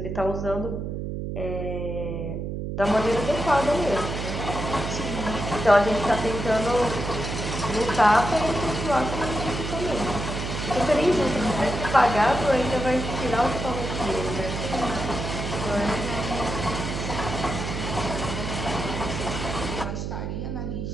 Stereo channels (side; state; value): right; noise; hum, 4 dB below the sound